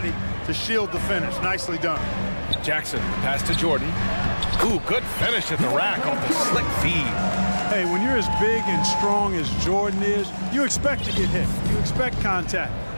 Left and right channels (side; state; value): both; inverted; correlation -1.00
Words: to shield the finish. Nicely done. Jackson, pass to Jordan. Ooh, good finish at the rack off the slick feed. Hey, when you're as big and strong as Jordan is, you expect to get hit. You expect contact.